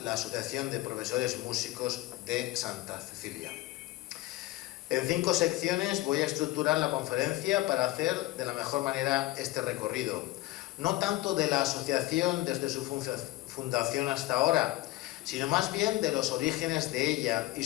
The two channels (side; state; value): right; quieter; 17.7 dB